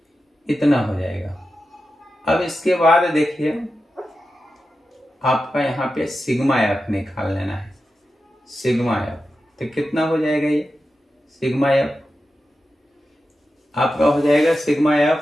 इतना हो जाएगा। अब इसके बाद देखिए आपका यहाँ पे सिग्मा एफ निकाल लेना है। सिग्मा एफ तो कितना हो जाएगा, ये सिग्मा एफ आपका हो जाएगा, सिग्मा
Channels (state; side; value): normal; both; correlation 0.91